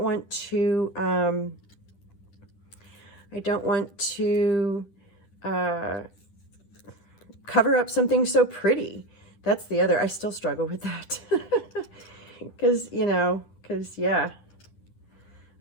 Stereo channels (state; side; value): late; right; 10 ms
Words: want to cover up something so pretty. That's the other, I still struggle with that. Because yeah,